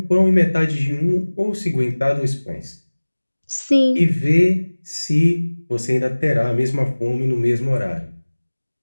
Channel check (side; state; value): both; inverted; correlation -1.00